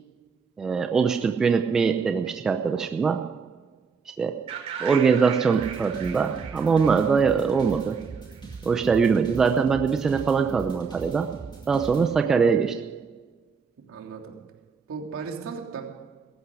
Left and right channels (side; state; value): left; quieter; 5.4 dB